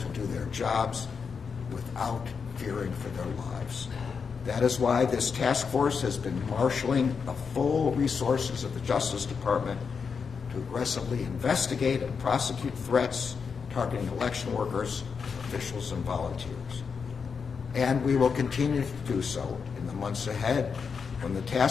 do their jobs without fearing for their lives. That is why this task force has been marshaling the full resources of the Justice Department to aggressively investigate and prosecute threats targeting election workers, officials, and volunteers. And we will continue to do so in the months ahead, when the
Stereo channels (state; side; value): quieter; right; 5.8 dB